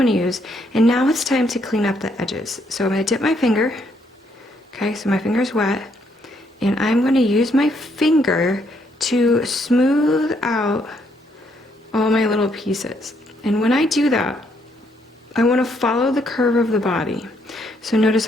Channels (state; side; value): normal; both; correlation 0.72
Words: to use. And now it's time to clean up the edges. So I'm going to dip my finger. Okay, so my finger's wet. And I'm going to use my finger to smooth out all my little pieces. And when I do that, I want to follow the curve of the body. So notice